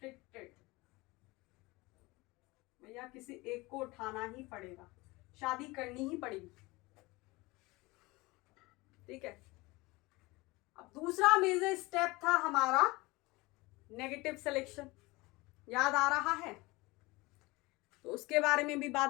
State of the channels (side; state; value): right; quieter; 22.7 dB